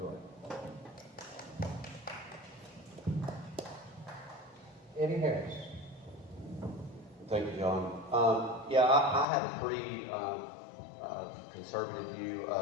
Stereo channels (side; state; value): right; drops out; at 9.2 s